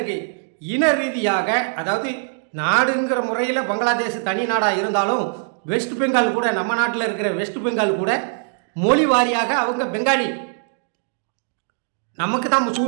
இன ரீதியாக, அதாவது நாடுங்கிற முறையில் பங்களாதேஷ் தனி நாடாக இருந்தாலும் வெஸ்ட் பெங்கால் கூட, நம்ம நாட்டில் இருக்கிற வெஸ்ட் பெங்கால் கூட மொழி வாரியாக அவங்க பெங்காலி. நமக்கு தான்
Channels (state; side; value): silent; left; digital silence